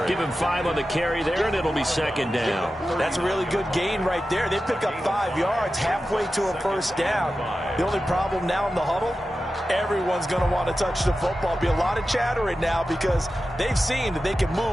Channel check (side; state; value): both; normal; correlation 0.93